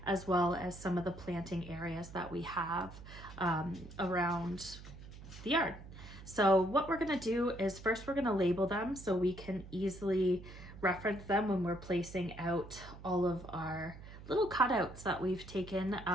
as well as some of the planting areas that we have around the yard. So what we're gonna do is first we're gonna label them so we can easily reference them when we're placing out all of our little cutouts that we've taken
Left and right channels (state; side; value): noise; right; hum, 15 dB below the sound